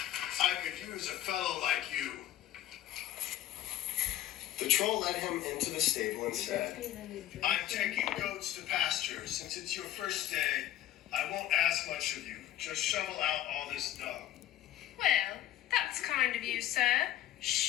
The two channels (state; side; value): quieter; right; 13.0 dB